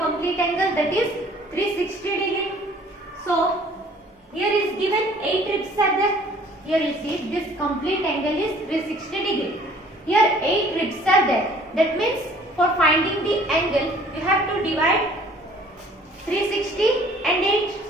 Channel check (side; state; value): both; normal; correlation 0.54